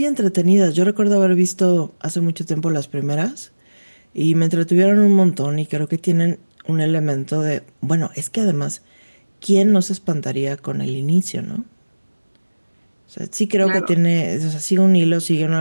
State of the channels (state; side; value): inverted; both; correlation -1.00